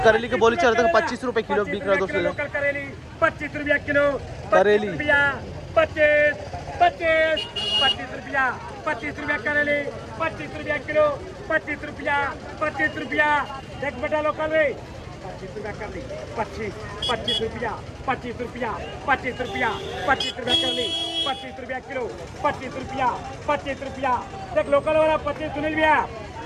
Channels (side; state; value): both; identical; correlation 1.00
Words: करेली की बोली चल रहा है 25 रुपये किलो बिक रहा है दोस्तों। लोकल करेली 25 रुपया किलो, करेली 25 रुपया, 25 रुपया करेली, 25 रुपया किलो, 25 रुपया। देख बेटा लोकल में 25 रुपया कर ली, 25 रुपया, 25 रुपया, 25 रुपया, 25 रुपया कर ली, 25 रुपया किलो, 25 रुपया। देख लोकल वाला 25 सुनील भैया,